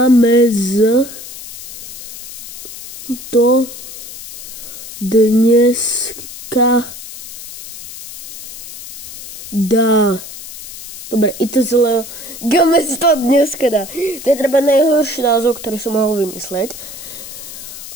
to dneska dá. Dobre, ITZ Leo Gamez to dneska dá. To je treba najhorší názov, ktorý som mohol vymysleť.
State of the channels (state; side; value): noise; left; hiss, 12 dB below the sound